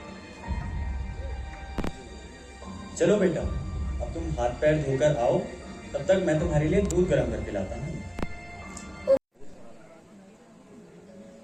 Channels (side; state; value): both; identical; correlation 1.00